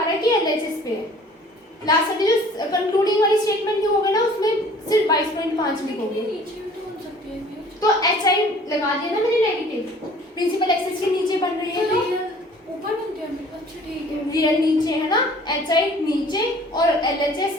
रहा है कि एलएचएस पे है। लास्ट वाली जो कंक्लूडिंग वाली स्टेटमेंट होगा ना उसमें सिर्फ 22.5 लिखोगे, तो HI लगा दिया ना मैंने नेगेटिव, प्रिंसिपल एक्सिस के नीचे बन रही है तो ऊपर बनते हैं। अच्छा ठीक है, रियल नीचे है ना, HI नीचे और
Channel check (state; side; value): normal; both; correlation 0.51